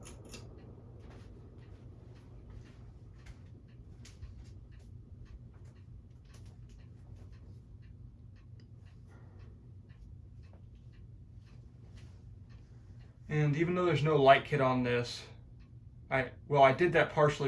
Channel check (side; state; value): both; identical; correlation 1.00